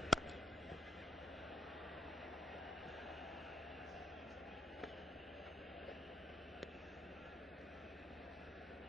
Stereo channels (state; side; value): normal; both; correlation 0.69